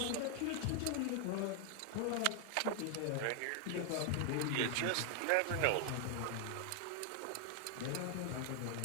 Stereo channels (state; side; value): different; both; correlation 0.00